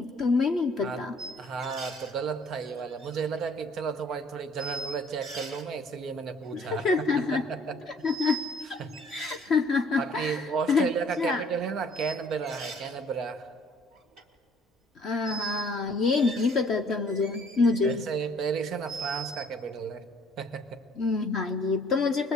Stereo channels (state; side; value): normal; both; correlation 0.58